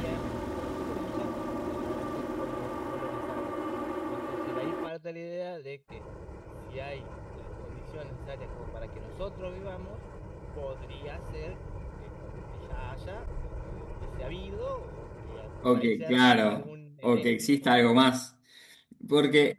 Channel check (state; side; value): identical; both; correlation 1.00